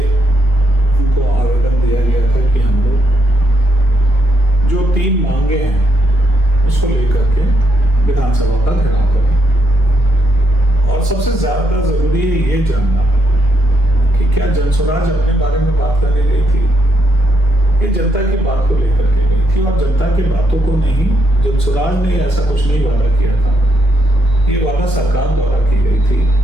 उनको आवेदन दिया गया था कि हम लोग जो 3 मांगे हैं उसको लेकर के विधानसभा का घेराव करें। और सबसे ज्यादा जरूरी है ये जानना कि क्या जन स्वराज अपने बारे में बात करने गई थी, ये जनता की बात को लेकर के गई थी और जनता की बातों को नहीं। जन स्वराज ने ऐसा कुछ नहीं वादा किया था, ये वादा सरकार द्वारा की गई थी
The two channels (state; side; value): normal; both; correlation 0.77